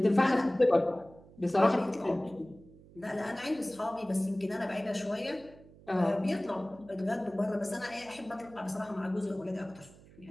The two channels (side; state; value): right; noise; hum, 23 dB below the sound